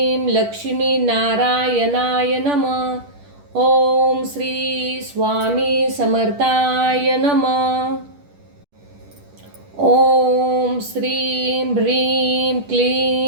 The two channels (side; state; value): left; late; 10 ms